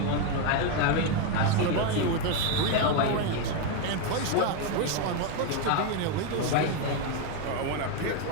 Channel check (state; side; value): different; both; correlation 0.02